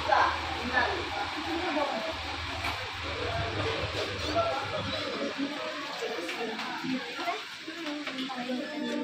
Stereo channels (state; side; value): identical; both; correlation 1.00